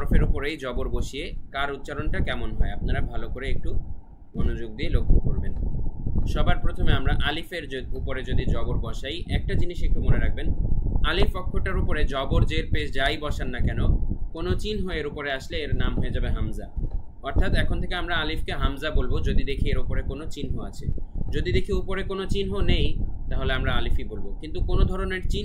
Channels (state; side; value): identical; both; correlation 1.00